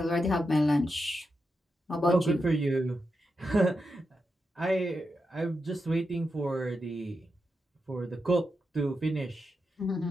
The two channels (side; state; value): both; normal; correlation 0.87